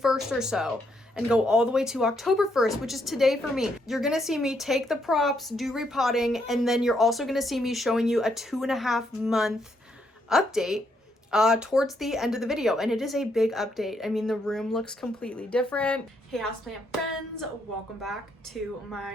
or so and go all the way to October 1st, which is today for me. You're going to see me take the props, do repotting, and then you're also going to see me showing you a 2.5 month update towards the end of the video, and it is a big update. I mean, the room looks completely different. Hey houseplant friends, welcome back to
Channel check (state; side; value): normal; both; correlation 0.75